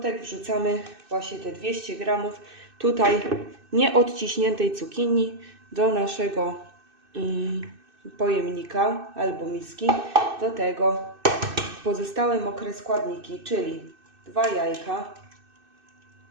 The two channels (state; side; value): late; left; 2.6 ms